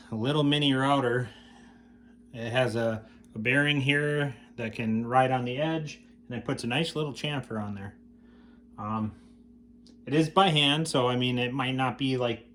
a little mini router. It has a bearing here that can ride on the edge, and it puts a nice little chamfer on there. It is by hand, so I mean it might not be like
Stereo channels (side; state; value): both; identical; correlation 1.00